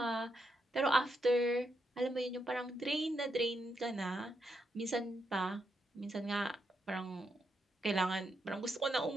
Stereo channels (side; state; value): both; normal; correlation 0.82